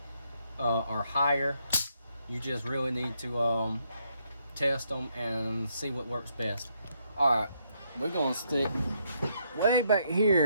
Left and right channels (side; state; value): both; inverted; correlation -0.75